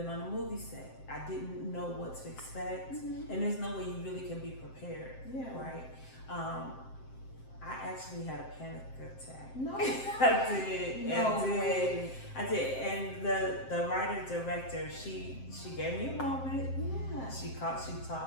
on a movie set. I didn't know what to expect, and there's no way you really can be prepared, right? I actually had a panic attack. No, I did. No way. I did. And the writer director, she gave me a moment. Yeah. She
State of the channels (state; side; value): late; right; 7.6 ms